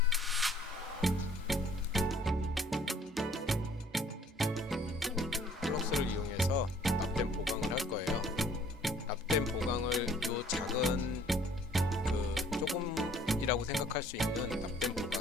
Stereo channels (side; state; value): both; normal; correlation 0.57